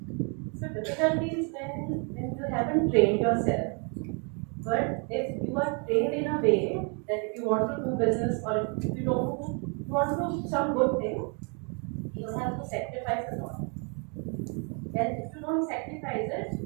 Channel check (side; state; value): left; quieter; 37.0 dB